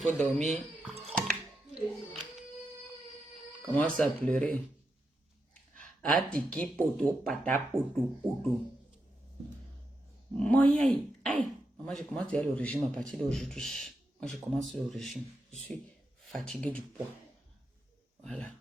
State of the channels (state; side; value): normal; both; correlation 0.86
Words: dormir, commence à pleurer. Atiki poto, pata poto, poto. Moi, aïe. Maman, je commence à aller au régime à partir d'aujourd'hui. Moi, je commence le régime. Je suis fatiguée du poids. Voilà.